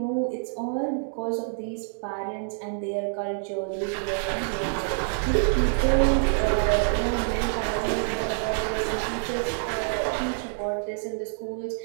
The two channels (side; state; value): left; silent; digital silence